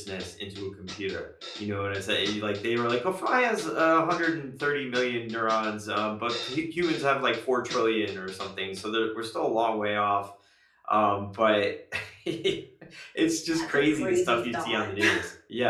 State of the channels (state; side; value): identical; both; correlation 1.00